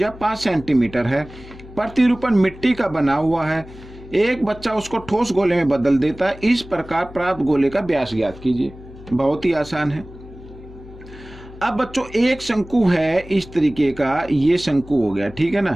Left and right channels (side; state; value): left; noise; hum, 18 dB below the sound